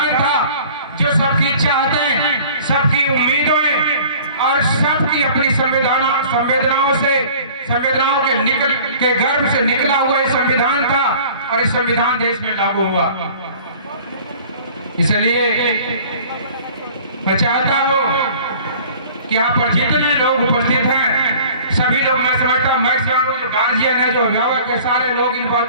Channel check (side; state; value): both; inverted; correlation -0.48